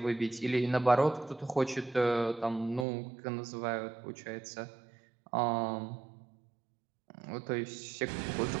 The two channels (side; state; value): left; drops out; at 2.9 s